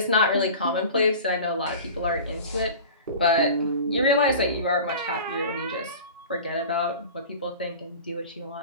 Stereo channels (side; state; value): both; inverted; correlation -0.37